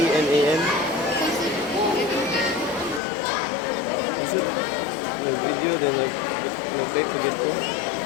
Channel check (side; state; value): right; drops out; at 3.0 s